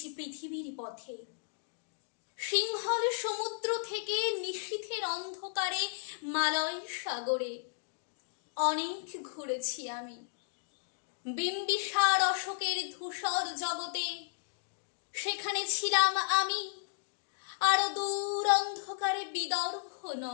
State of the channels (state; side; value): silent; right; digital silence